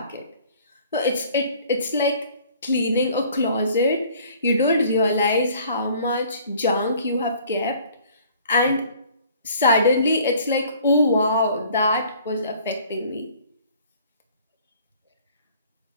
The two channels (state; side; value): inverted; both; correlation -0.54